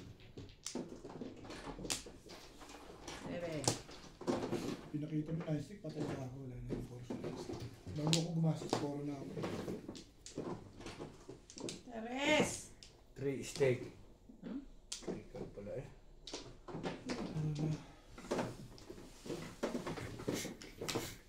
Bebe. Pinakita mo na stick, patay ka ako. Wala na yung force. Bago ako gumastos, poro na ako. Teres! 3 steak. Hmm? Ikaw pala eh.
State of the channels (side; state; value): both; identical; correlation 1.00